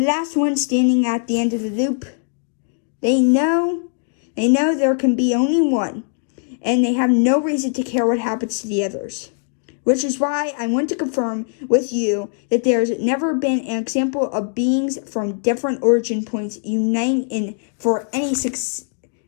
one standing at the end of the loop, they know They know there can be only one, and they have no reason to care what happens to the others. Which is why I want to confirm with you that there's never been an example of beings from different origin points uniting for any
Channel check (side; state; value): right; silent; 58 dB below the other